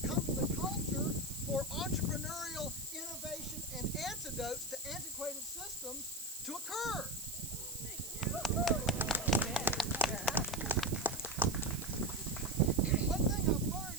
come to the culture for entrepreneurial innovation and antidotes to antiquated systems to occur. One thing I've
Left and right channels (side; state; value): right; noise; hiss, 9 dB below the sound